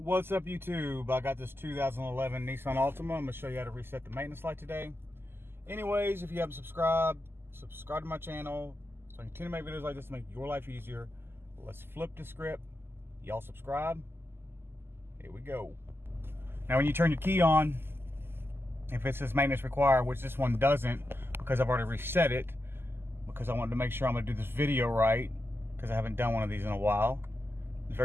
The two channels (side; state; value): left; late; 0.11 ms